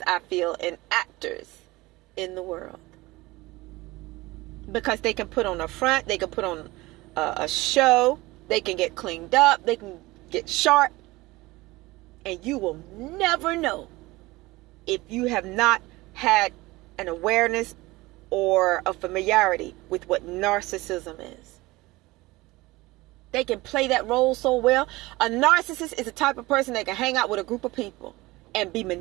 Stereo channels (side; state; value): left; quieter; 20.6 dB